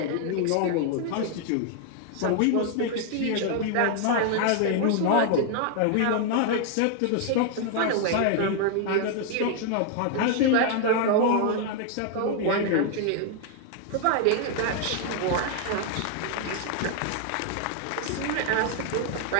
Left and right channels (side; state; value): both; different; correlation 0.00